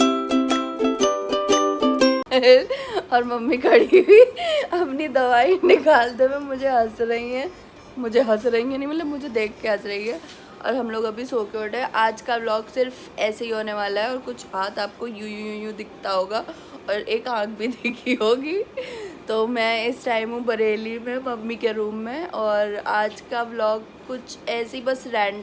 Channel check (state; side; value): identical; both; correlation 1.00